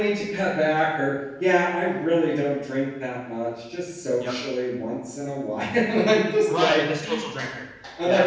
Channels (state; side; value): identical; both; correlation 1.00